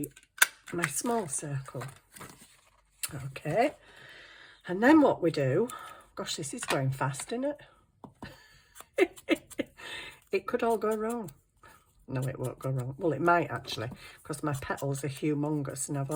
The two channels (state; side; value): identical; both; correlation 1.00